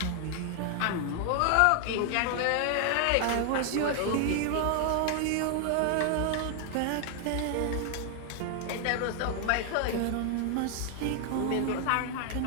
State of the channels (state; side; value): different; both; correlation 0.00